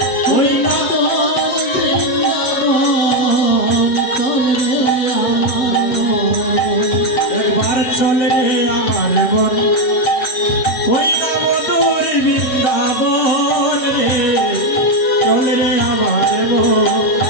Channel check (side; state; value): right; late; 7.9 ms